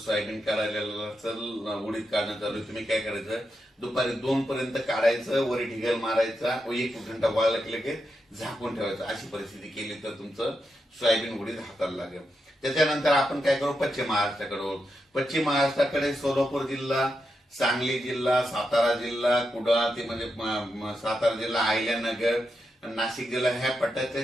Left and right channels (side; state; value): both; normal; correlation 0.86